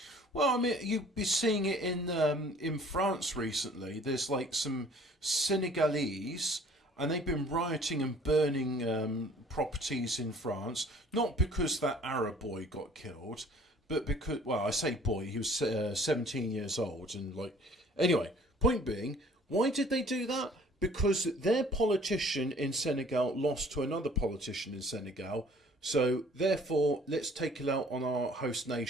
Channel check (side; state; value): both; normal; correlation 0.53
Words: Well, I mean, you've been seeing it in France recently. There's like some Senegalese, and they've been rioting and burning properties in France, not because that Arab boy got killed, but because, well, I say boy, he was 17 years old, and like, anyway. Point being, why did they do that? Because their politician in Senegal lost to another politician in Senegal. So therefore, let's take it out on our host